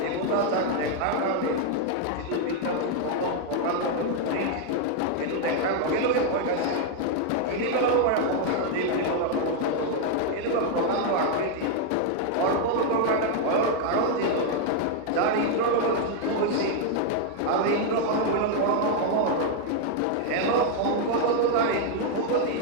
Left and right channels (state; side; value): different; both; correlation 0.00